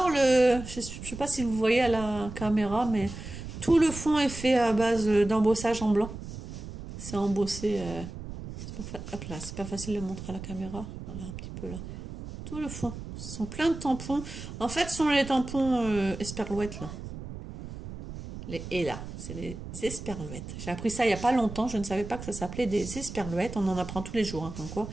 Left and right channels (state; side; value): noise; right; rumble, 10 dB below the sound